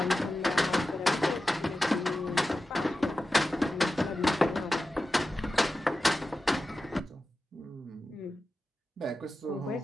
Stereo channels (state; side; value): normal; both; correlation 0.93